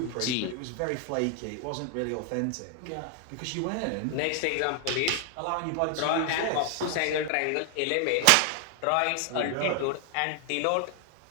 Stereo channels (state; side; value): different; both; correlation 0.00